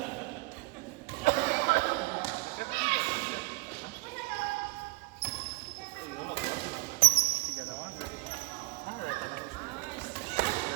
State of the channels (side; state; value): left; quieter; 24.1 dB